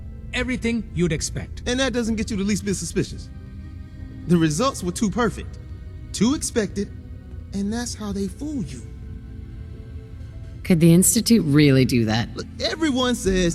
Everything you'd expect. And that doesn't get you the least bit suspicious. The results were too perfect, too expected, and that's how they fool you. Could the Institute really do that? Look, everyone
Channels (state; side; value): identical; both; correlation 1.00